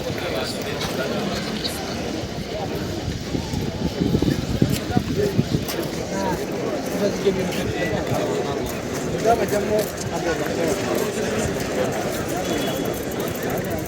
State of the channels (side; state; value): both; identical; correlation 1.00